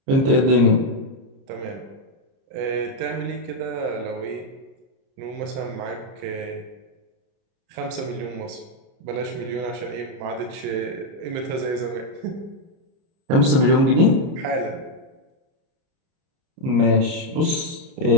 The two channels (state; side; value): late; left; 30 ms